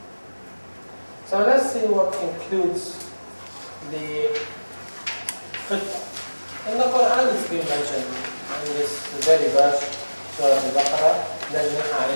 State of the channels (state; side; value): inverted; both; correlation -1.00